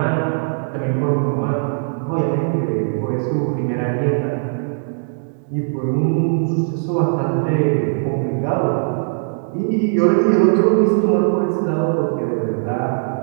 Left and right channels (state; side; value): silent; left; digital silence